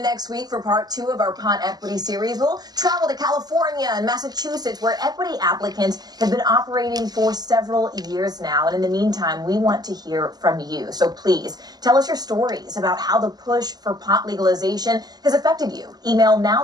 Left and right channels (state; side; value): late; left; 0.20 ms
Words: next week for part 2 of our Pot Equity series. We'll travel to California and Massachusetts, where equity applicants have been operating for several years now. And in the meantime, we want to hear from you. So please tell us your stories about how the push for pot legalization has affected you. Email